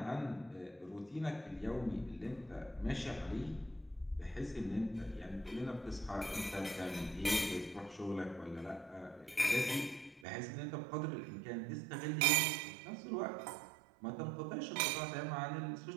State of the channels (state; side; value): drops out; left; at 10.2 s